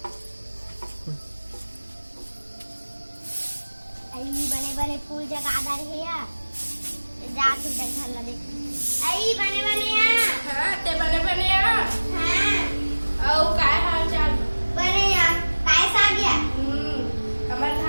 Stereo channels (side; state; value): both; inverted; correlation -1.00